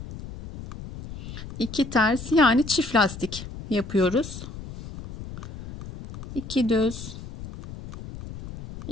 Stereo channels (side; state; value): left; noise; rumble, 12 dB below the sound